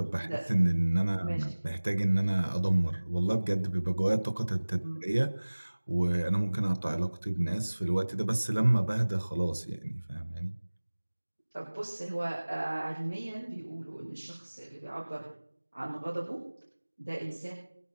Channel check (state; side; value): inverted; both; correlation -1.00